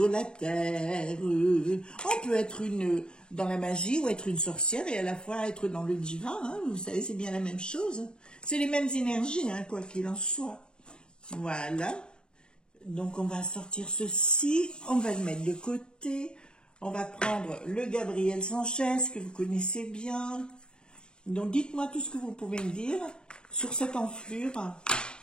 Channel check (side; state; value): right; late; 0.049 ms